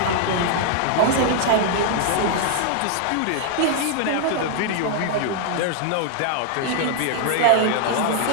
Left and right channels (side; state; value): both; different; correlation 0.00